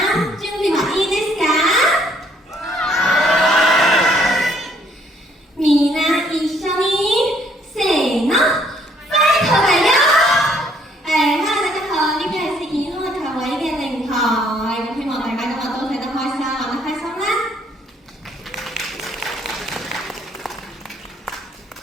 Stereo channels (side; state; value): both; normal; correlation 0.64